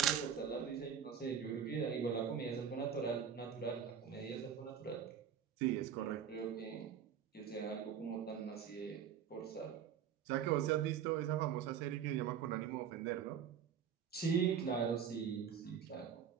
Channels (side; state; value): left; quieter; 8.0 dB